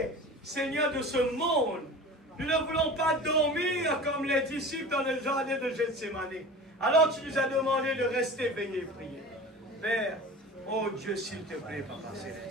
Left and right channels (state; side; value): normal; both; correlation 0.37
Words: Seigneur, de ce monde. Nous ne voulons pas dormir comme les disciples dans le jardin de Gethsémani. Alors tu nous as demandé de rester veillés et prier. Père, oh Dieu, s'il te plaît, Papa